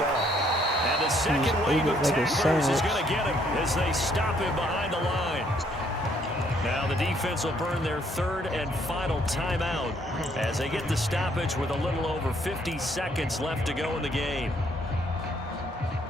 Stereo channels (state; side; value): normal; both; correlation 0.67